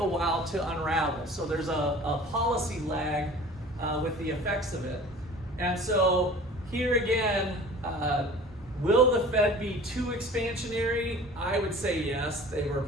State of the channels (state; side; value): normal; both; correlation 0.44